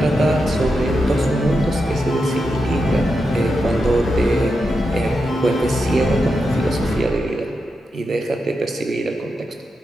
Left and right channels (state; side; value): normal; both; correlation 0.87